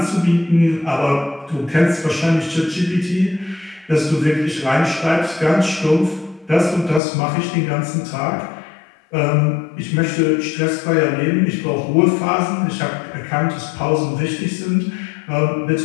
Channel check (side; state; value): right; drops out; at 7.0 s